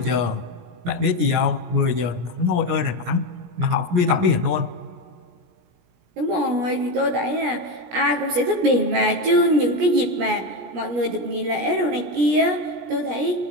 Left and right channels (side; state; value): left; late; 17 ms